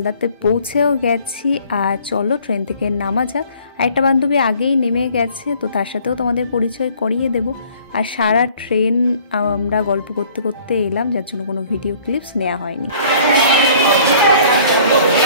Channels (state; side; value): inverted; both; correlation -0.55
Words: পৌঁছেও গেছি আর চলো ট্রেন থেকে নামা যাক। আরেকটা বান্ধবী আগেই নেমে গেছে, তো তার সাথেও তোমাদের পরিচয় করিয়ে দেব। আর সারা ট্রেন আমরা গল্প করতে করতে এলাম, যার জন্য কোনো ভিডিও ক্লিপস নেওয়া হয়নি।